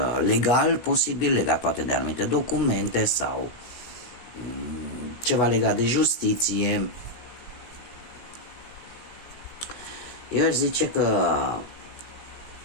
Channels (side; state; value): right; late; 17 ms